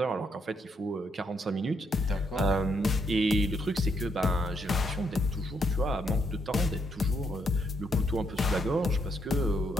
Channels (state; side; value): normal; both; correlation 0.76